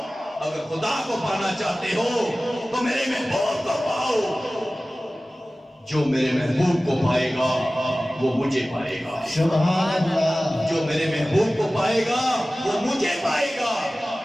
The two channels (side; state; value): both; normal; correlation 0.97